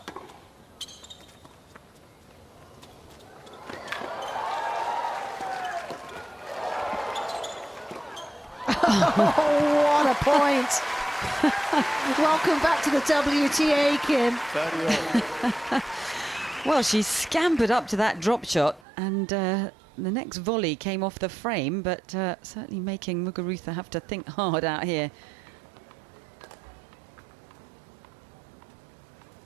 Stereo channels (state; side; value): drops out; left; at 18.8 s